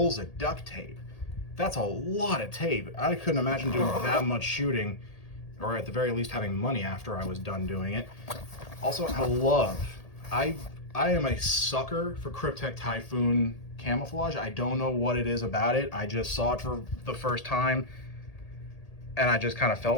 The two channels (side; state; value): right; late; 1.8 ms